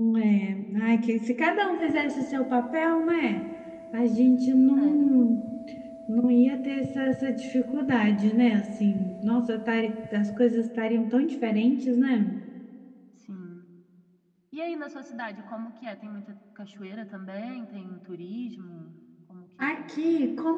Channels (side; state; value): both; identical; correlation 1.00